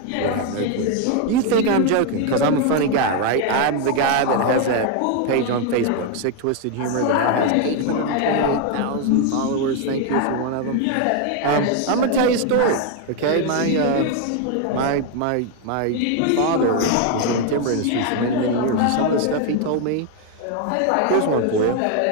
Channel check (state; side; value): different; both; correlation 0.01